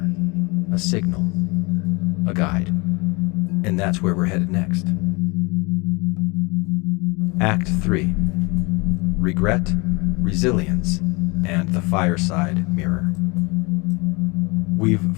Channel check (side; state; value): right; quieter; 27.7 dB